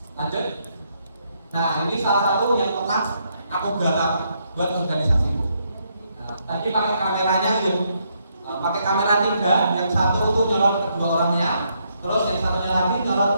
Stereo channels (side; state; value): both; inverted; correlation -0.75